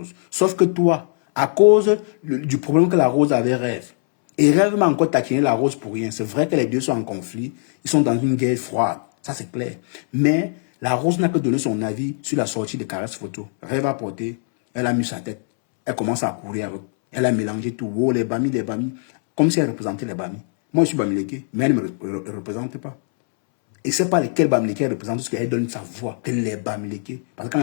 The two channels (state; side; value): silent; right; 65 dB below the other